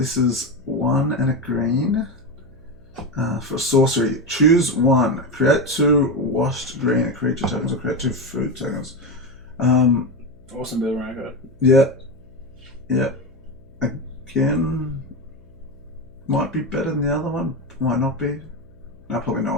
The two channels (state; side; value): noise; left; hum, 27 dB below the sound